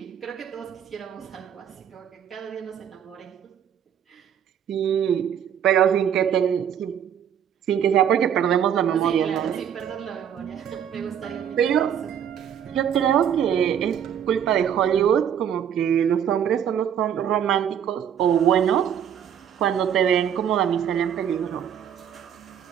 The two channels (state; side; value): quieter; left; 8.9 dB